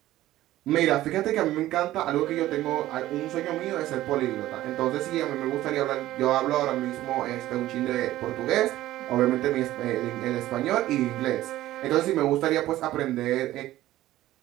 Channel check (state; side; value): quieter; left; 15.1 dB